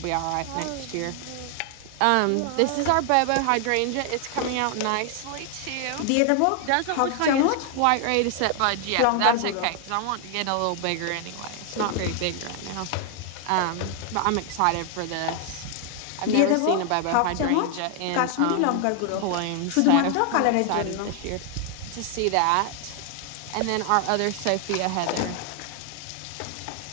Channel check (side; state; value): both; different; correlation 0.00